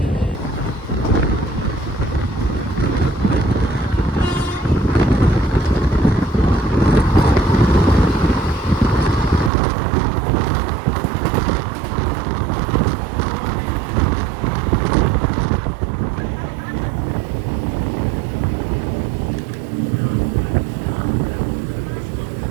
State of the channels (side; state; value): left; drops out; at 9.5 s